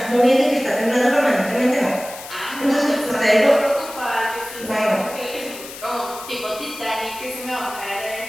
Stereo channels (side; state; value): left; noise; hiss, 13 dB below the sound